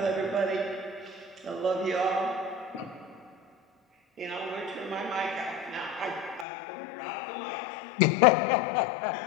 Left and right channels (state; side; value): drops out; right; at 6.5 s